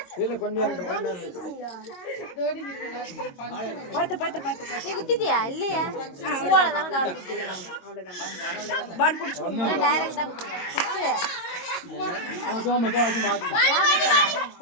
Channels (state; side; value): late; right; 22 ms